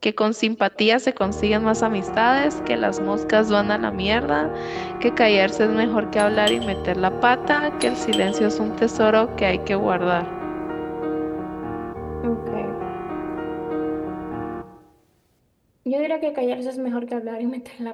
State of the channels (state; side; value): identical; both; correlation 1.00